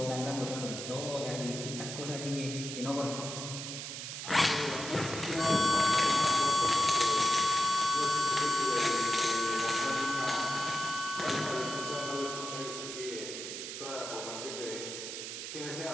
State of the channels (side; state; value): right; noise; hiss, 7 dB below the sound